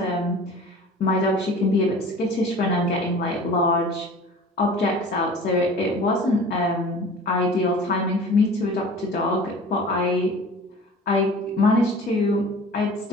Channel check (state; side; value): normal; both; correlation 0.42